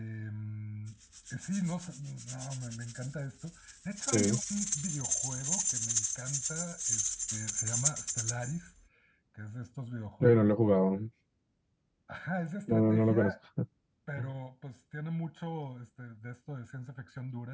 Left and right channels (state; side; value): identical; both; correlation 1.00